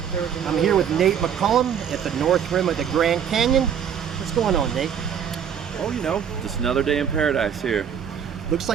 I'm here with Nate McCullum at the north rim of the Grand Canyon. What's going on, Nate? Oh, just another day in paradise here. Looks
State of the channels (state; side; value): quieter; left; 8.2 dB